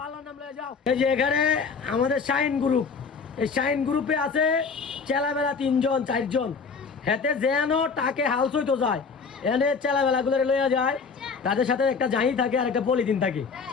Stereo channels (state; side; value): quieter; right; 5.2 dB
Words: আল্লাহর নাম লয়ে যাও। এই যে এখানে আমাদের শাইন গ্রুপ, এই শাইন গ্রুপে আছে চেলাবেলা 3 জন 4 জন, হেতে যেন তাকে হাউস হইতো যায়, এনে চেলাবেলা গুলো লইয়া যায়, তাদের সাথে একটা জাহি থাকে আর একটা পলিথিন থাকে,